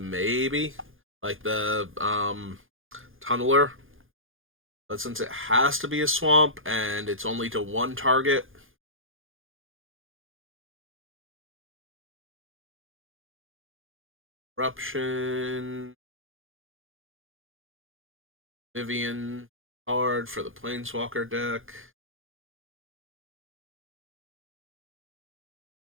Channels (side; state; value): left; late; 0.59 ms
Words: Like the Tunneler. But since it has to be a swamp and it's only to one target, Eruption, Vivian card for the Planeswalker deck.